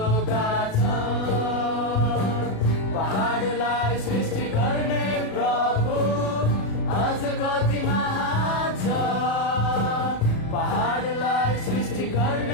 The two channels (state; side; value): late; right; 37 ms